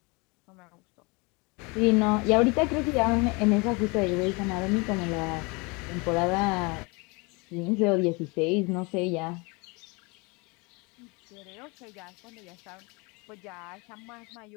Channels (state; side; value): quieter; right; 28.3 dB